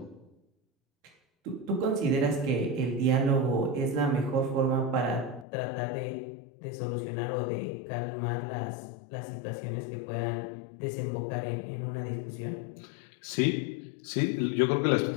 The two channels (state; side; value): drops out; right; at 5.5 s